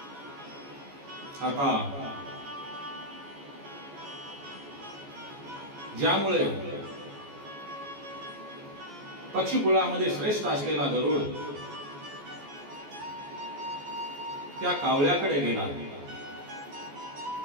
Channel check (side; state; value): left; late; 14 ms